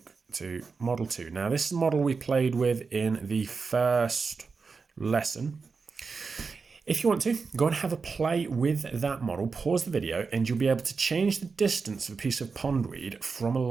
to Model 2. Now, this is the model we played with in the first lesson. If you want to, go and have a play with that model, pause the video, and you'll be able to change the distance of a piece of pondweed from a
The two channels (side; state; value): left; quieter; 4.8 dB